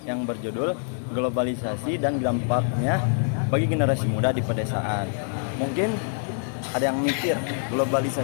yang berjudul globalisasi dan dampaknya bagi generasi muda di pedesaan. Mungkin ada yang mikir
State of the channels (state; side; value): silent; right; digital silence